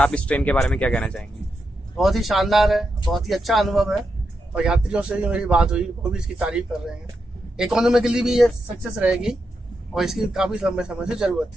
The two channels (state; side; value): normal; both; correlation 0.85